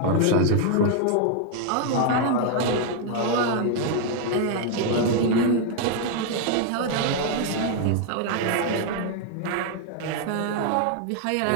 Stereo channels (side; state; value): both; different; correlation 0.00